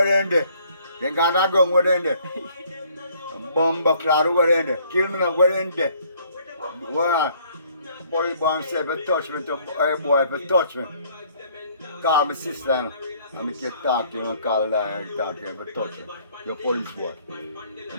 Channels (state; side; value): inverted; both; correlation -0.62